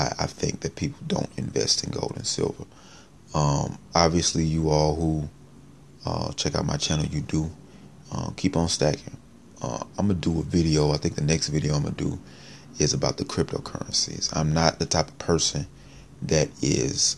I think that people don't invest in gold and silver. Obviously, you all who check out my channel, you do. Keep on stacking. I'm going to do a video. I think the next video I'm going to do is about the cryptocurrencies. I'm not the type of person that is,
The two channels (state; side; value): identical; both; correlation 1.00